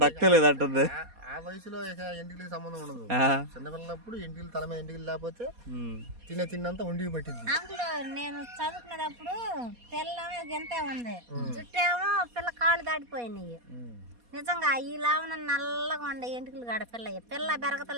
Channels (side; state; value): left; late; 4.2 ms